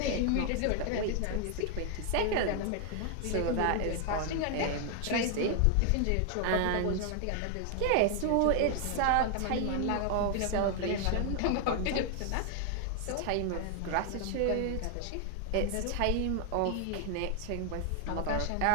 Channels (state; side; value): different; both; correlation 0.00